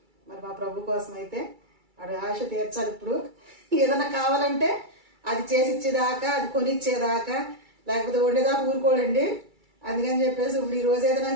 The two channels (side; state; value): left; late; 2.3 ms